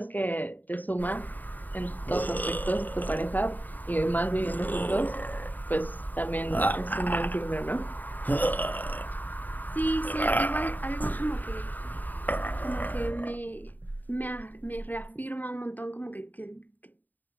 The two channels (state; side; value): late; right; 0.085 ms